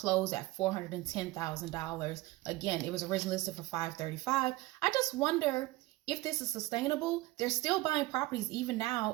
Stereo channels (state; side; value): quieter; left; 19.6 dB